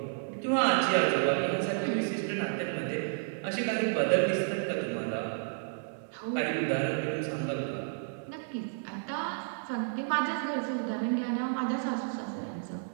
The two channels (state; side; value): silent; left; 57 dB below the other